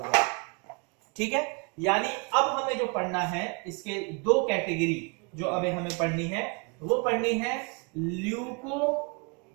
ठीक है, यानी अब हमें जो पढ़ना है इसके दो कैटेगरी जो अभी हमें पढ़नी है, वो पढ़नी है ल्यूकोसाइटोसिस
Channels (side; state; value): left; quieter; 33.3 dB